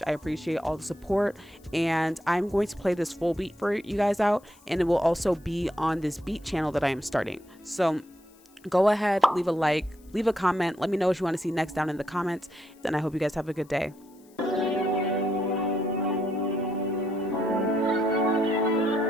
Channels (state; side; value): noise; left; hiss, 30 dB below the sound